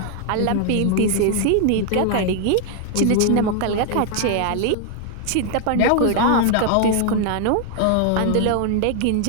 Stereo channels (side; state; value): both; different; correlation 0.00